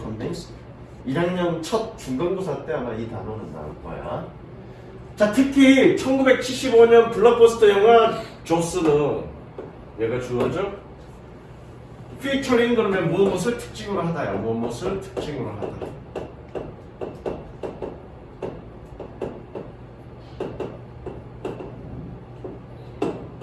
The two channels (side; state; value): both; identical; correlation 1.00